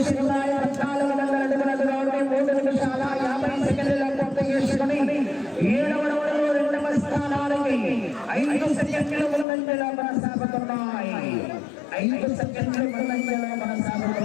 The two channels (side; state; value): right; drops out; at 9.5 s